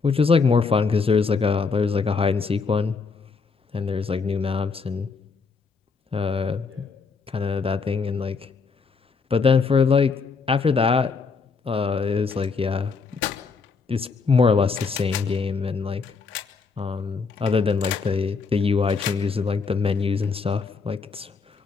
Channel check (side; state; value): right; quieter; 4.8 dB